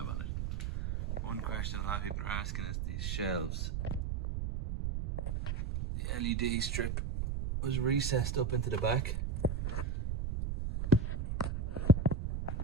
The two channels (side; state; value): right; noise; rumble, 1 dB below the sound